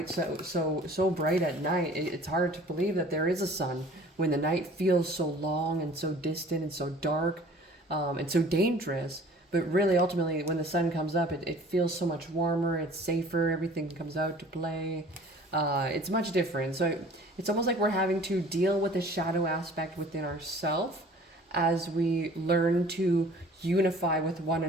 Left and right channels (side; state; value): both; normal; correlation 0.49